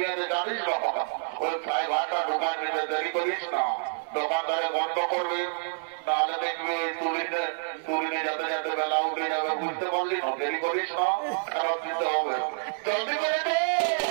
জানিস না ওই প্রায় ভাটা ঢুকায় নিতে দেরি করিস না, দোকানদারে বন্ধ করবে তাহলে দেখবি ওই তুলিনে যাতে যাতে বেলা উঠে যাবে, বুঝতে পারলি না, দেরি করিস না, ফেরত দিতে হবে, জলদি করে দে।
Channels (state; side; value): silent; left; digital silence